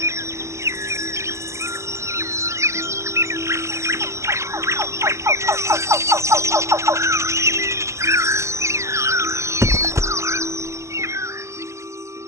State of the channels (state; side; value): late; left; 0.14 ms